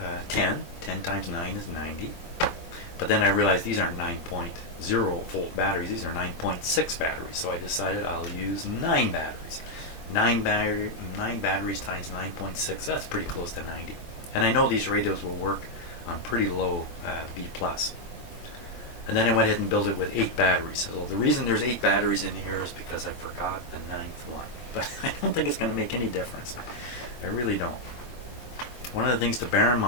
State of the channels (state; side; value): late; right; 23 ms